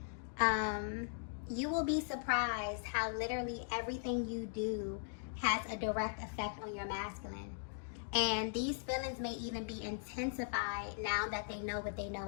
You will be surprised how literally everything you do has a direct effect on your masculine. And these feelings may even be intensified now that they know what they know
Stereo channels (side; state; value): right; silent; digital silence